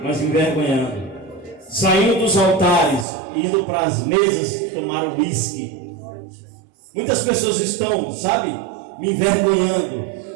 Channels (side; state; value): left; drops out; at 3.1 s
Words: mas me envergonhando. Saindo dos altares, indo para as mesas tomar uísque. Muitas pessoas estão, sabe, me envergonhando.